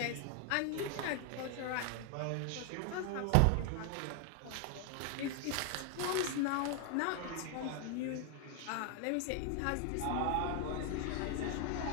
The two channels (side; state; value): both; different; correlation 0.01